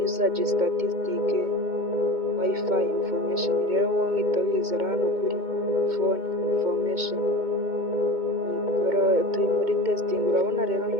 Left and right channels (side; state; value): left; late; 2.2 ms